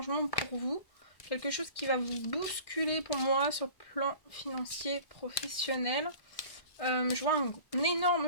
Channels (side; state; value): right; late; 1.6 ms